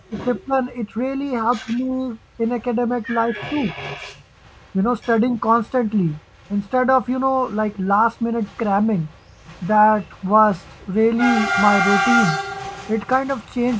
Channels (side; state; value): both; identical; correlation 1.00